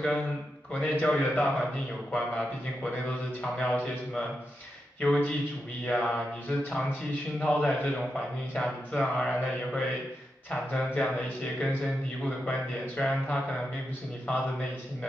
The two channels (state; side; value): normal; both; correlation 0.87